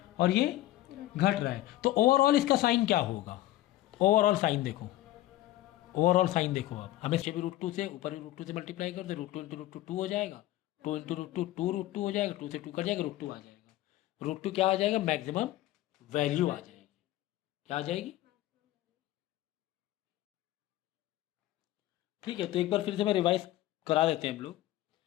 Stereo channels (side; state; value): right; quieter; 15.4 dB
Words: और ये घट रहा है, तो ओवरऑल इसका साइन क्या होगा, ओवरऑल साइन देखो, ओवरऑल साइन देखो, आप हमें भी √2 से ऊपर भी √2 से मल्टीप्लाई कर दो, √2 × √2 हो जाएगा, 2 × √2 2√2 हो जाएगा, 2 से 2 कट जाएगा, √2 आ जाएगा, √2 क्या आ जाएगा, मैक्सिमम वैल्यू आ जाएगी, क्या आ जाएगी, ठीक है। तो एक बार फिर से मैं रिवाइज करा देते हैं हम लोग,